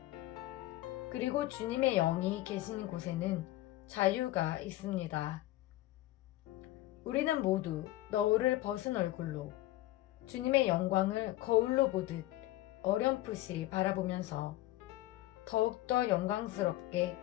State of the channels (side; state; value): right; quieter; 16.3 dB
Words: 그리고 주님의 영이 계신 곳에는 자유가 있습니다. 우리는 모두 너울을 벗은 얼굴로 주님의 영광을 거울로 보듯 어렴풋이 바라보면서 더욱더 영광스럽게